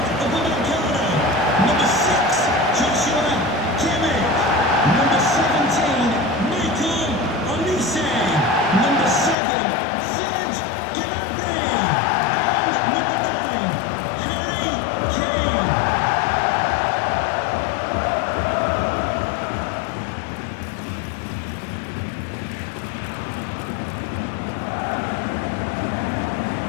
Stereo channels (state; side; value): drops out; right; at 9.3 s